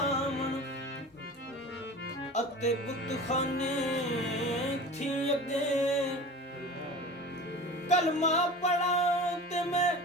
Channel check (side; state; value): both; normal; correlation 0.36